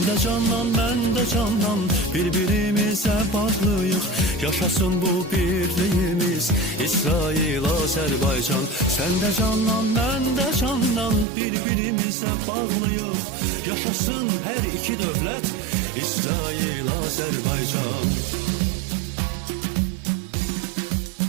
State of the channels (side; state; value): left; drops out; at 11.2 s